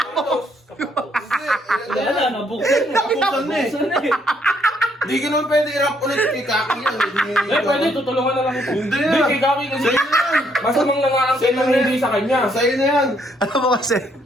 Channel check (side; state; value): both; normal; correlation 0.70